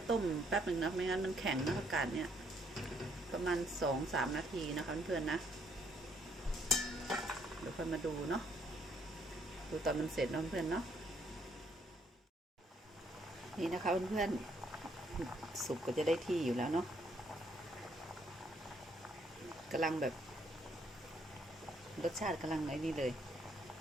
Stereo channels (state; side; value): normal; both; correlation 0.69